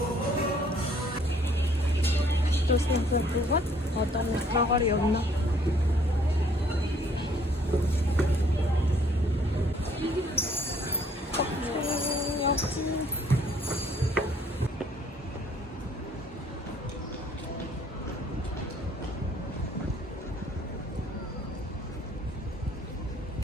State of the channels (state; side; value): normal; both; correlation 0.61